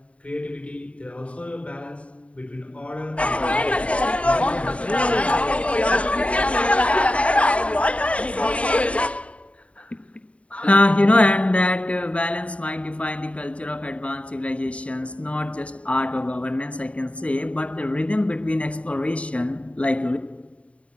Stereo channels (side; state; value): right; late; 0.064 ms